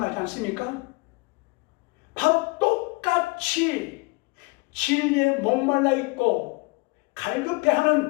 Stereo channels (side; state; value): right; quieter; 27.2 dB